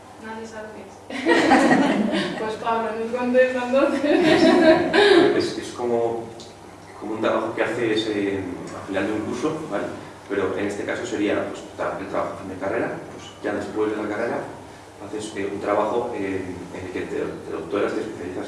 Nadie sabe lo que es. Pues Pablo, nos contesta entonces. Es como un trabajo que haces al final de un curso, ¿vale? Pero en este caso sería pues, el trabajo de carrera, pues ya después de la carrera haces un trabajo en el que te doctoras, te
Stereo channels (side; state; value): both; identical; correlation 1.00